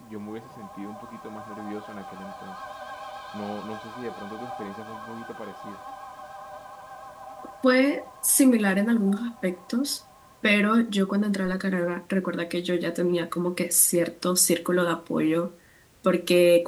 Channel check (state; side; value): identical; both; correlation 1.00